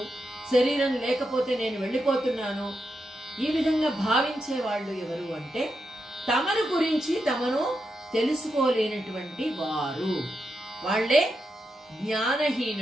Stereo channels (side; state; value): both; normal; correlation 0.85